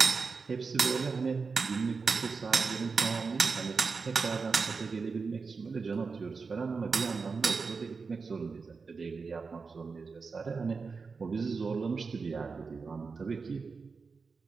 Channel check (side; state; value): left; quieter; 4.8 dB